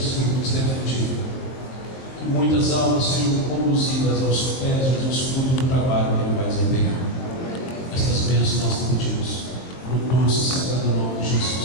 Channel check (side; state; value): right; late; 22 ms